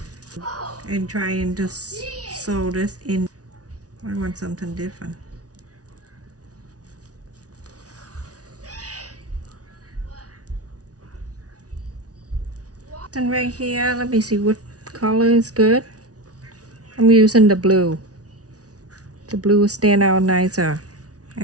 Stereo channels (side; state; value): left; late; 0.68 ms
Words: and try and just sew this in. I want something different. And right here, let me see what color is good. I'm using the blue. The blue will stand out nicer